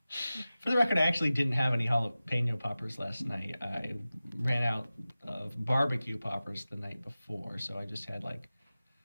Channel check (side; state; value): both; inverted; correlation -0.96